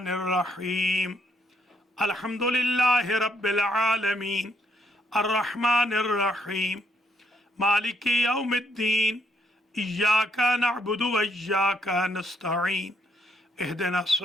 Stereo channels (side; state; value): both; normal; correlation 0.73